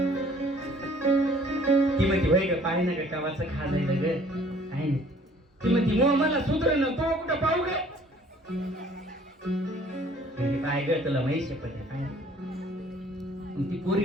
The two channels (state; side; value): normal; both; correlation 0.56